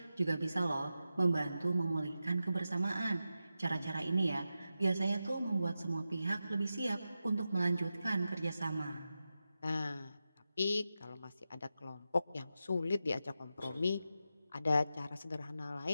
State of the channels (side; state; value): both; inverted; correlation -0.91